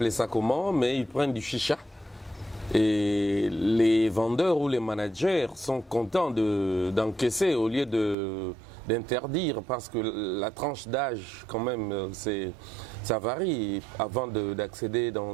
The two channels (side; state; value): left; drops out; at 8.2 s